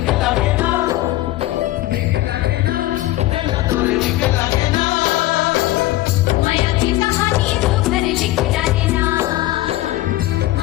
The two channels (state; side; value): quieter; right; 16.8 dB